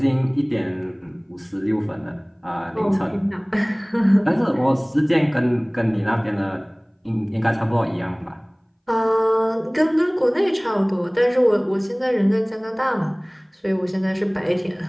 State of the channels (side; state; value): both; identical; correlation 1.00